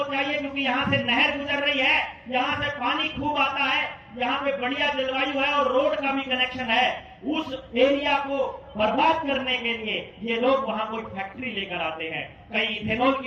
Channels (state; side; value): identical; both; correlation 1.00